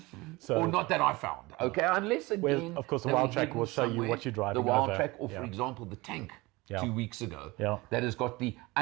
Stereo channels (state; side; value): quieter; left; 22.4 dB